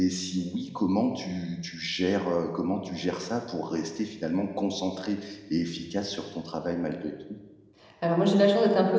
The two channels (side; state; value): both; identical; correlation 1.00